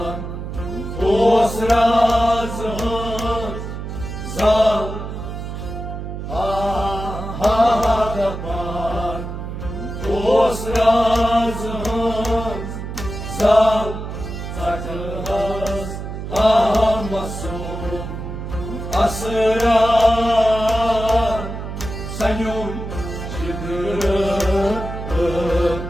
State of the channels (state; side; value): noise; right; hum, 7 dB below the sound